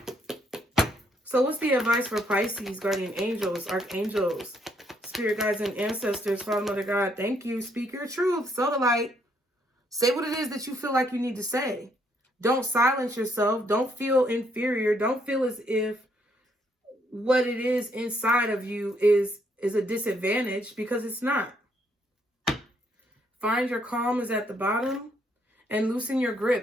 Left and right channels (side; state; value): both; normal; correlation 0.71